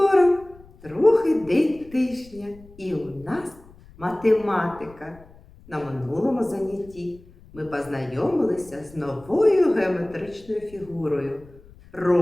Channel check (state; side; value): noise; left; rumble, 23 dB below the sound